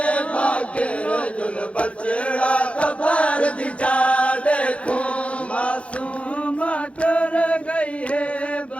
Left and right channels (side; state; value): right; late; 0.062 ms